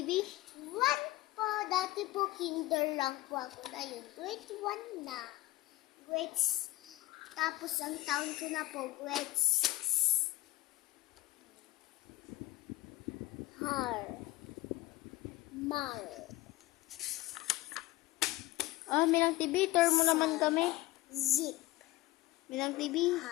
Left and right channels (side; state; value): right; quieter; 18.5 dB